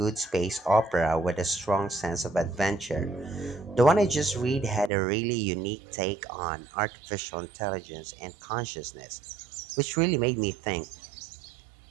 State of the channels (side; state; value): left; drops out; at 4.9 s